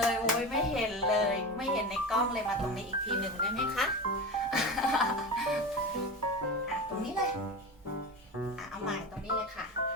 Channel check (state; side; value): normal; both; correlation 0.25